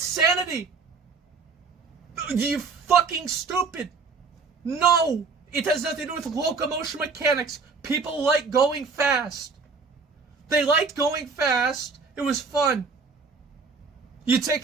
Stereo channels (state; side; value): quieter; left; 4.7 dB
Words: You fucking stupid. No, it has nothing to do with locomotion mechanics. People like going fast. They liked going fast. It was fun. You take